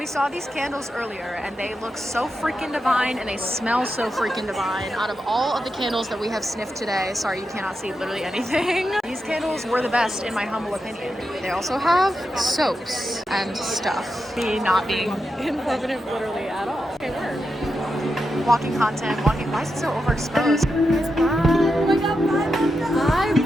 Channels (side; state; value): both; normal; correlation 0.87